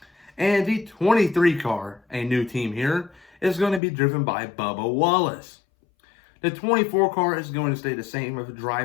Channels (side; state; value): right; drops out; at 3.8 s